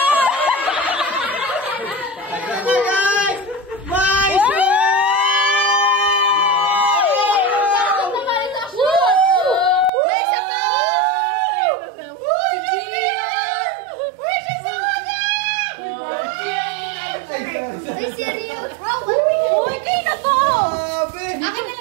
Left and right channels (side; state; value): left; drops out; at 9.9 s